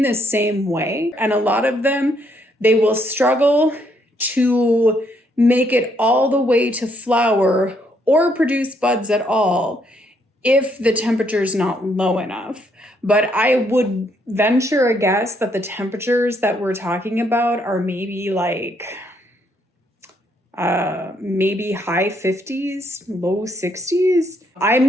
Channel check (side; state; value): both; normal; correlation 0.72